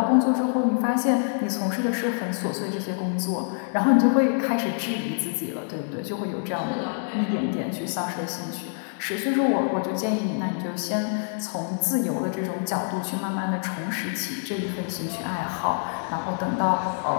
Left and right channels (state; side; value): silent; right; 61 dB below the other